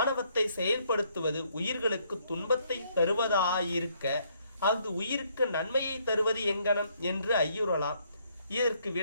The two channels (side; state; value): both; inverted; correlation -0.69